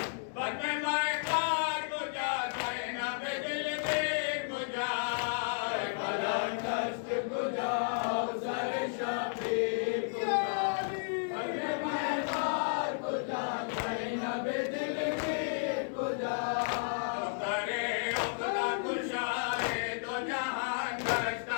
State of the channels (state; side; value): silent; right; 56 dB below the other